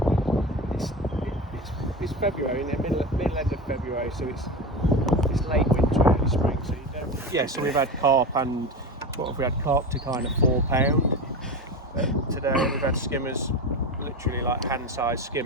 it's February, in the middle end of February, so it's late winter, early spring, so you don't. Yeah, so we've had carp, and what have we had? Carp to kind of £4 today. We've had skimmers, literally like hand-sized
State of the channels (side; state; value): both; normal; correlation 0.24